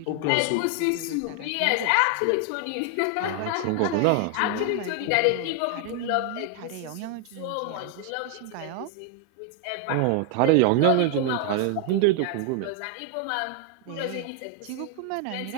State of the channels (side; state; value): both; different; correlation 0.00